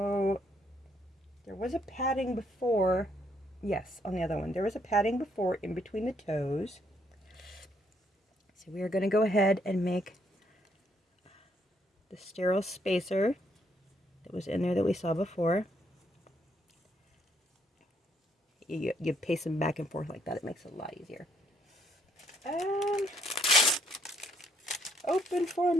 there was a padding before Yes, on the other one. There was a padding before in between the toes. So we are going to go ahead and make the sterile spacer that was in there that we saw before. You pace them back and forth like that. It makes it a lot easier. Open for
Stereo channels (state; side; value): normal; both; correlation 0.70